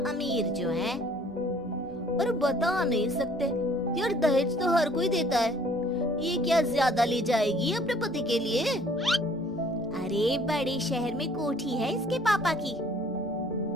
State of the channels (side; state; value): both; normal; correlation 0.57